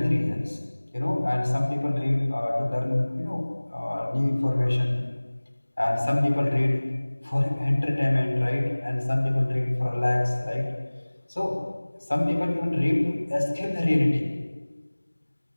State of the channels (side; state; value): both; inverted; correlation -1.00